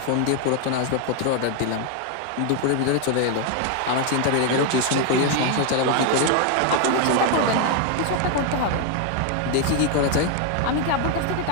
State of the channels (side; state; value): both; different; correlation 0.01